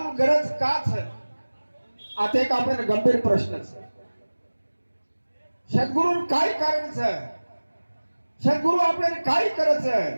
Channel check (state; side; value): inverted; both; correlation -1.00